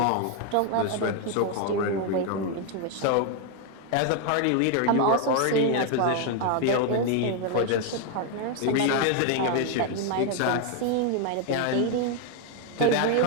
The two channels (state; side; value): different; both; correlation 0.01